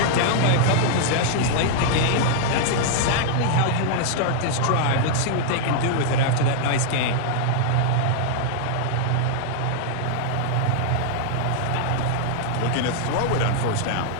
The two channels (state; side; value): different; both; correlation -0.01